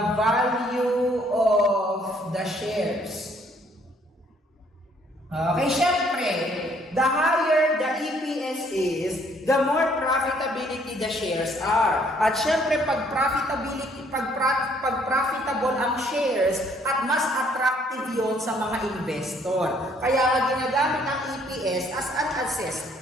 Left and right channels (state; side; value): normal; both; correlation 0.64